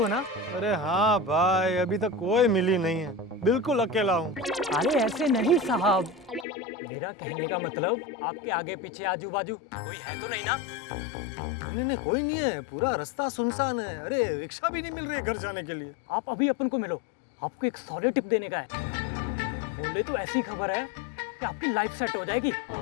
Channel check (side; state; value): right; drops out; at 6.5 s